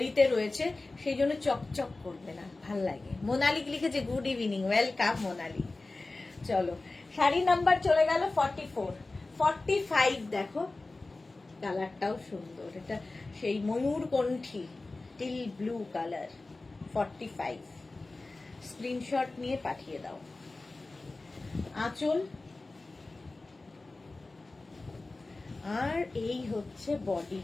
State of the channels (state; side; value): quieter; right; 3.2 dB